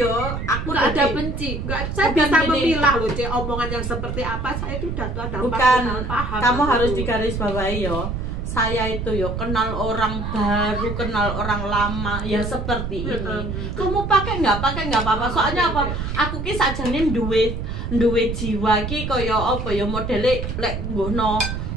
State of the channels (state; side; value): noise; right; rumble, 4 dB below the sound